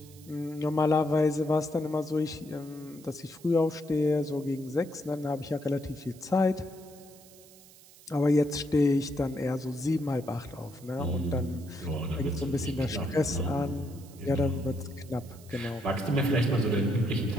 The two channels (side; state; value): right; noise; hiss, 23 dB below the sound